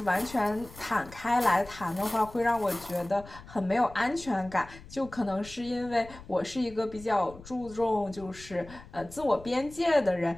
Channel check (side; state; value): left; noise; rumble, 18 dB below the sound